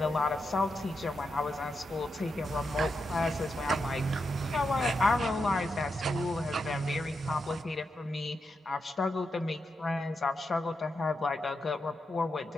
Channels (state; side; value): normal; both; correlation 0.85